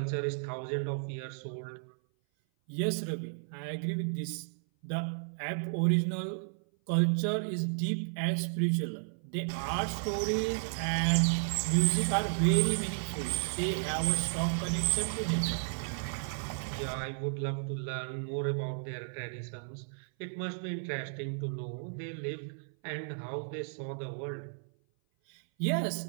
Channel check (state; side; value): silent; left; 56 dB below the other